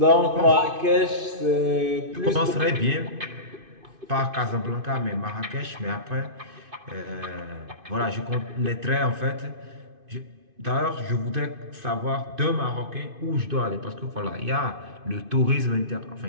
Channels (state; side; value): late; left; 2.5 ms